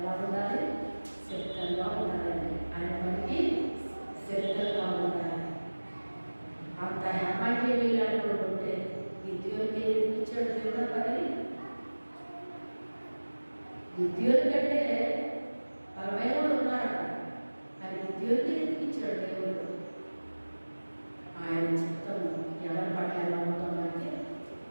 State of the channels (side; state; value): both; inverted; correlation -1.00